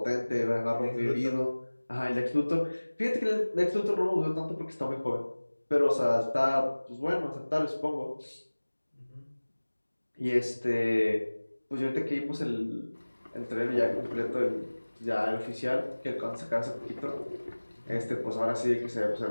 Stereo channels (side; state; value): both; inverted; correlation -1.00